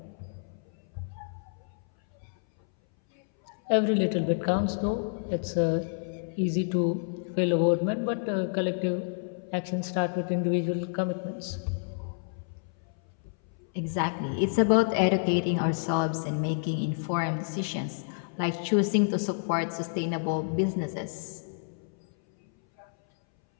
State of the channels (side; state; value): right; silent; 58 dB below the other